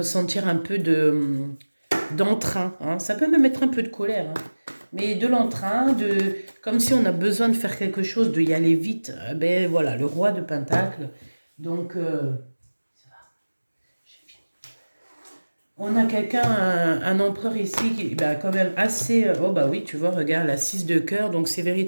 un peu d'entrain. Hein. Ça peut même être un peu de colère. Hein. Mais de l'entrain, comme si on a besoin de faire quelque chose, de y aller vite. Ben voilà, le roi de Pentacle. Donc, on a quelqu'un, un empereur ici, qui bah, quand même assez... oh bah oui, tu vois, regarde, la 6 de cœur. Donc, c'est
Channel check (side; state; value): both; inverted; correlation -1.00